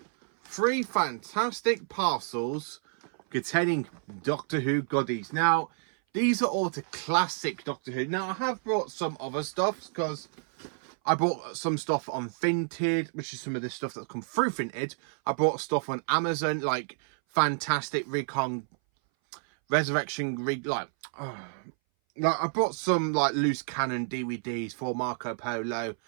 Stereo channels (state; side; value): silent; left; 58 dB below the other